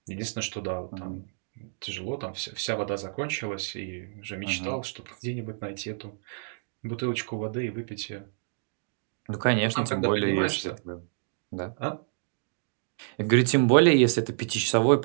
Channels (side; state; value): left; silent; digital silence